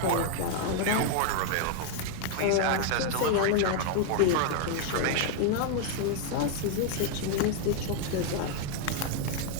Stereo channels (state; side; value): different; both; correlation 0.00